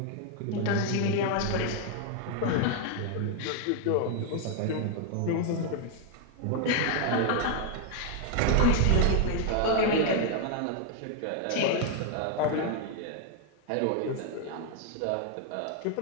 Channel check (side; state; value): both; different; correlation 0.00